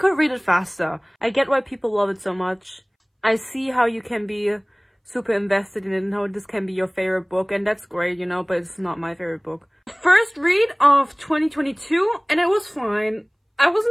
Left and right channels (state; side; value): identical; both; correlation 1.00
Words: read it faster. I get why people love it so much. I see how you can be super invested in it and how this can be your favorite book, and that's great, you know, but it's not my favorite book. First read of 2022, and it was fine. I